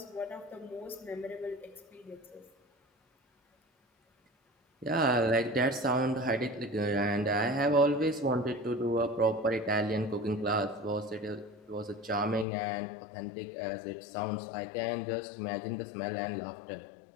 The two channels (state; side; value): drops out; right; at 12.5 s